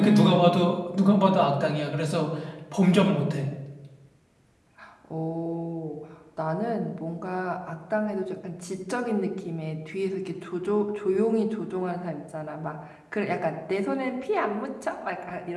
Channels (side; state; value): both; identical; correlation 1.00